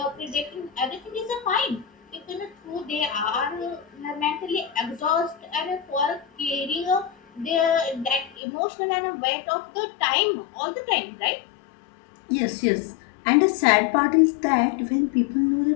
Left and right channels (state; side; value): drops out; right; at 8.3 s